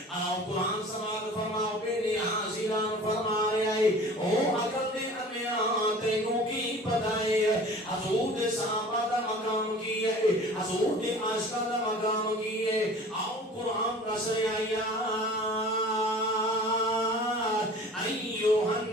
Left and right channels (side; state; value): both; normal; correlation 0.44